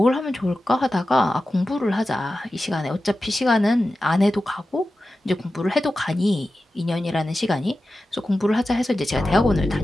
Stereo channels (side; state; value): both; normal; correlation 0.93